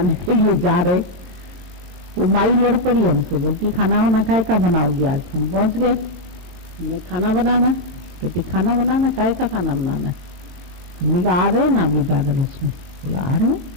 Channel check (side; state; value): left; late; 22 ms